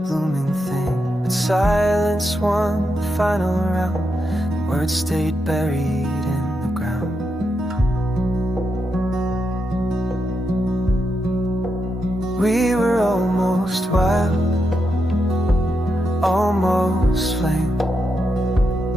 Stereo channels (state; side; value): normal; both; correlation 0.84